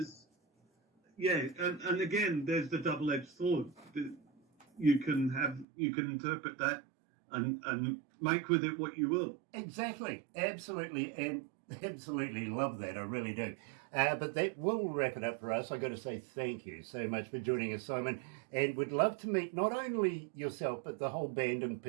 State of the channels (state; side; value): drops out; left; at 5.7 s